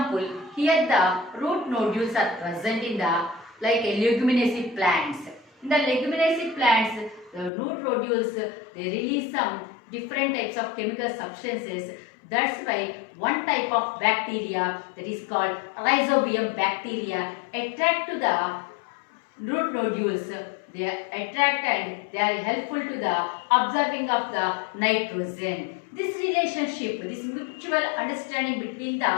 here the root nodules are present in the like leguminaceous plants. In the leguminaceous plants, the root nodules they release some different types of chemical substances. That's why one type of bacteria that is called rhizobium bacteria attract to the root nodules. They attract and they are helpful to the absorbing of the nitrogen. This relationship, this mutual understanding between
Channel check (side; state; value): right; drops out; at 7.5 s